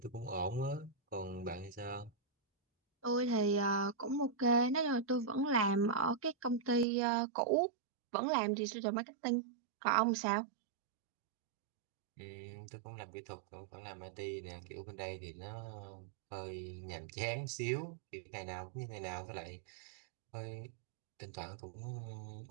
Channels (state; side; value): drops out; left; at 6.9 s